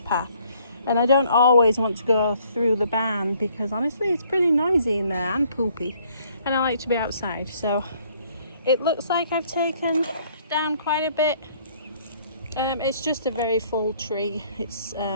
And I don't always want to go through the barn because honestly it's pretty noisy in there and poopy, and I like to be outside. So it looks like I've taken down quite a bit. It's just a very full tree. It's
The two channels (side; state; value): both; inverted; correlation -0.63